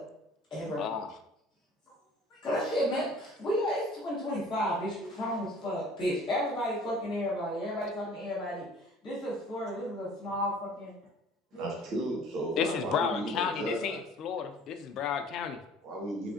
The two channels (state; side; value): normal; both; correlation 0.50